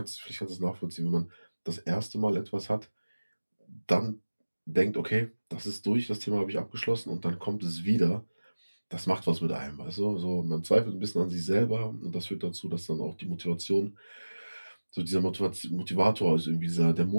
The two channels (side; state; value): both; inverted; correlation -1.00